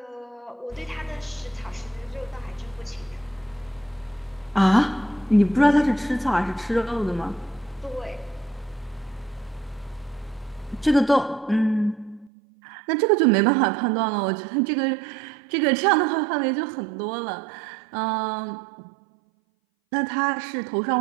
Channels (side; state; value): left; drops out; at 12.3 s